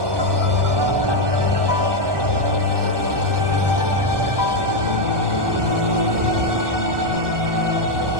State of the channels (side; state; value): left; late; 1.2 ms